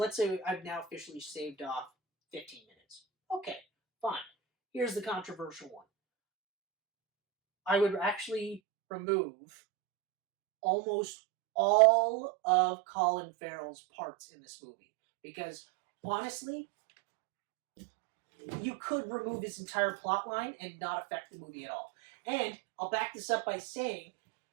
say I've now officially shaved off 15 minutes. Okay, fine. Here's the controversial one. I would actually remove almost all of Colin Farrell's parts in this movie. Because, honestly, you could remove his entire plot line and not affect the movie at all. And I'll back this up by saying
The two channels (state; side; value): drops out; left; at 8.6 s